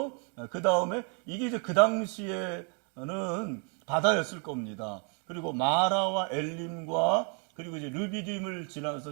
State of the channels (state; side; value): quieter; left; 38.0 dB